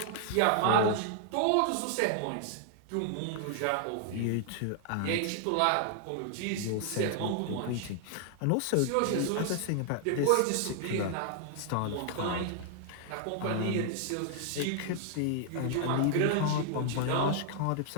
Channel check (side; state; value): both; different; correlation 0.00